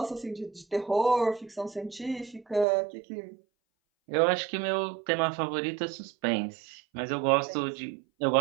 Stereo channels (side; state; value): left; drops out; at 2.7 s